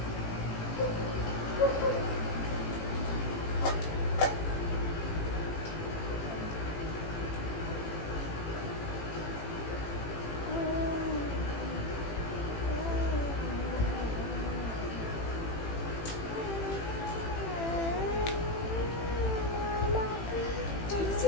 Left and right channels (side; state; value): right; late; 18 ms